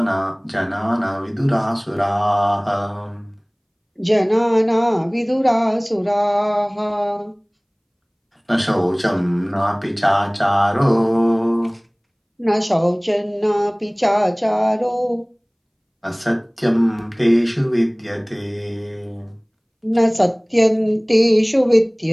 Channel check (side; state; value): both; identical; correlation 1.00